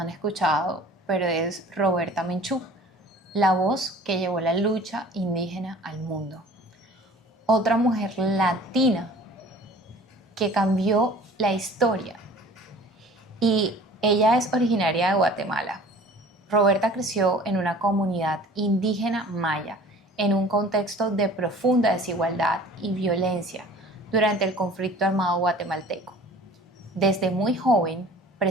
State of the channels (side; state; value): both; normal; correlation 0.46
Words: escuchado, pero es Roberta Menchú, la voz que llevó la lucha indígena al mundo. Otra mujer latina que cambió la historia. Y ella es originaria de Guatemala. Roberta creció en una comunidad indígena maya, en un contexto de profunda desigualdad y violencia durante el conflicto armado guatemalteco. Desde muy joven